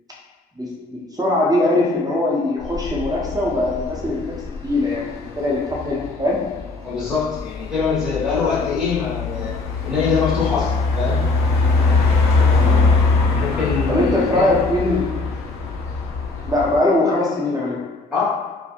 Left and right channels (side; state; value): right; quieter; 3.0 dB